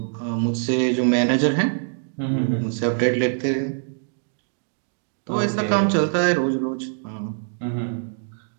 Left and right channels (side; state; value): left; silent; digital silence